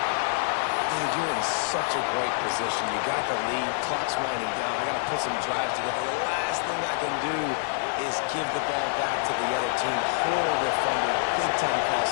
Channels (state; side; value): silent; right; 57 dB below the other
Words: Dude, you're in such a great position. You got the lead. Clock's winding down. I got to put some drives together. The last thing I can do is give the ball back to the other team. Horrible fumble. Big-time